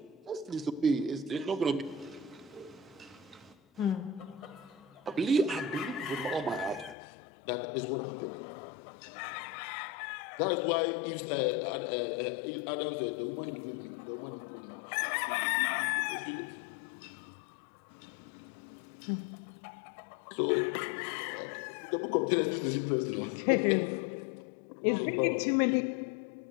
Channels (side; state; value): right; drops out; at 7.0 s